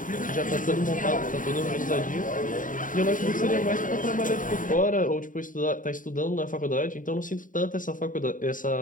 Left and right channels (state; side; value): late; right; 0.39 ms